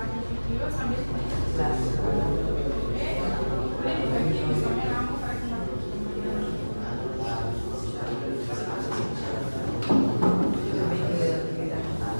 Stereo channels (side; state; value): both; inverted; correlation -1.00